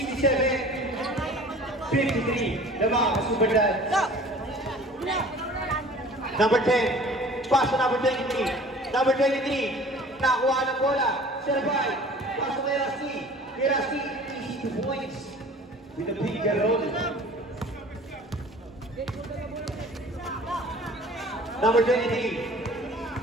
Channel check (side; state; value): both; normal; correlation 0.46